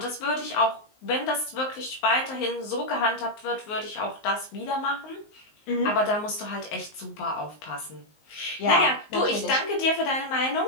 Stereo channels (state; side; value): late; right; 19 ms